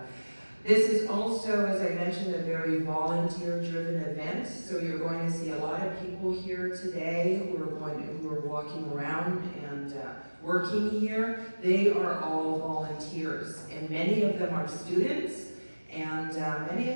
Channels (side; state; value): both; inverted; correlation -1.00